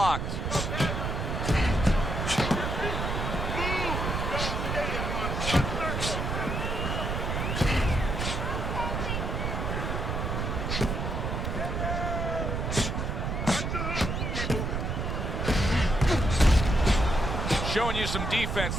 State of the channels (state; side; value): noise; right; rumble, 2 dB below the sound